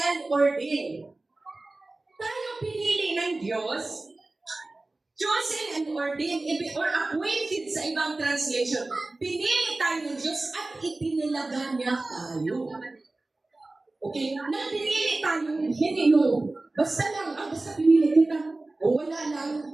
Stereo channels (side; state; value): left; quieter; 3.0 dB